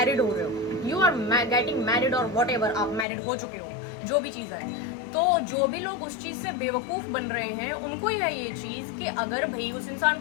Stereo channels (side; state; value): right; drops out; at 3.1 s